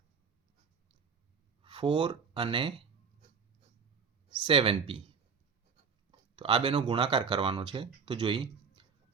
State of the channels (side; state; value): left; quieter; 5.9 dB